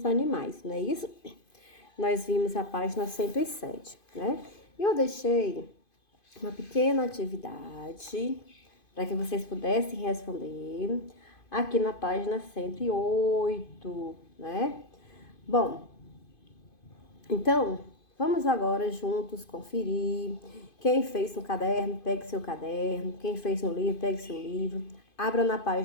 animais, não é isso? Nós vimos a página 107, né? E eu deixei uma pequena atividade para que vocês pudessem responder aqui na página 108, né? Bom, então, vamos agora juntos conferir. Quem fez no caderno, pegue seu caderno. Quem fez no livro, pegue seu livro. Abra na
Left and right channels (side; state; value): right; late; 2.5 ms